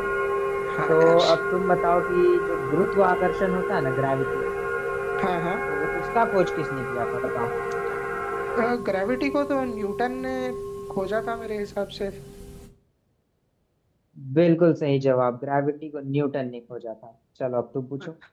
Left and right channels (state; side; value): identical; both; correlation 1.00